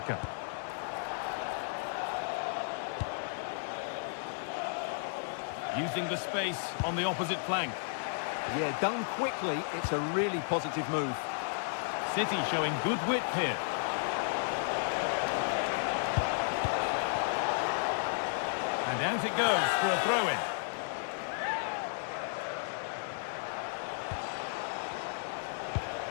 Using the space on the opposite flank. Yeah, done quickly, it's a really positive move. City showing good wit here. And out it goes for a throw-in.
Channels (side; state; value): right; silent; 55 dB below the other